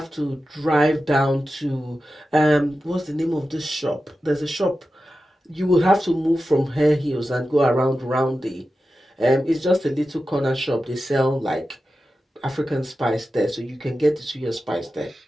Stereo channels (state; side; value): normal; both; correlation 0.92